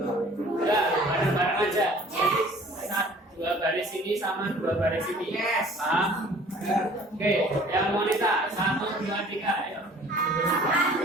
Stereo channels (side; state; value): both; normal; correlation 0.51